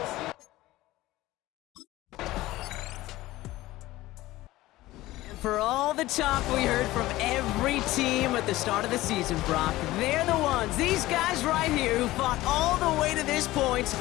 For all the talk we heard from every team at the start of the season, Brock, they're the ones, these guys right here, who fought all the way to this point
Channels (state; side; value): quieter; right; 17.3 dB